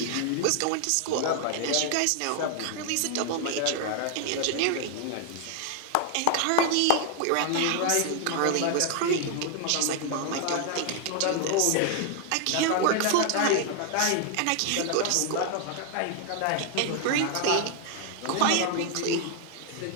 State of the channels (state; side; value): different; both; correlation 0.00